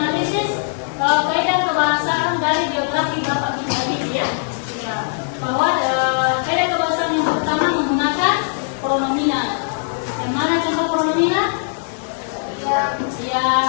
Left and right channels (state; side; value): silent; right; digital silence